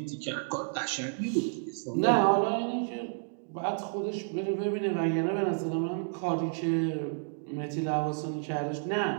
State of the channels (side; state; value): left; silent; digital silence